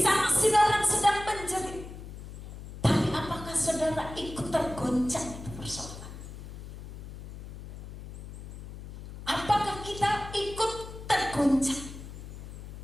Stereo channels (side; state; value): left; noise; hum, 12 dB below the sound